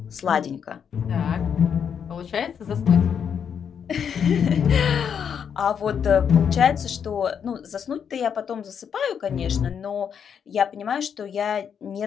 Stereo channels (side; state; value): right; quieter; 7.6 dB